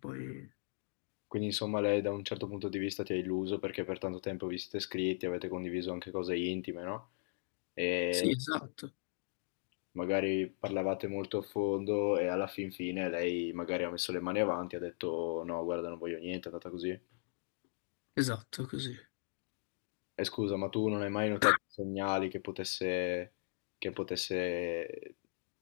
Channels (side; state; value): right; silent; digital silence